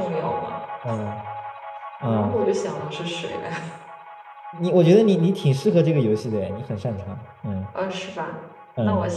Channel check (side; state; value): both; identical; correlation 1.00